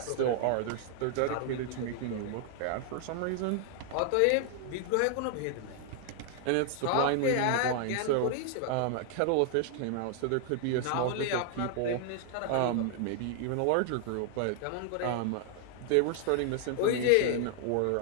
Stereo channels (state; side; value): different; both; correlation 0.00